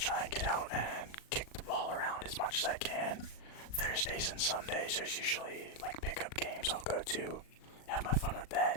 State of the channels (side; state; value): right; late; 38 ms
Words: and get out and kick the ball around as much as I can. Thursdays and Sundays, there's usually like pickup games I'll go to, have my fun with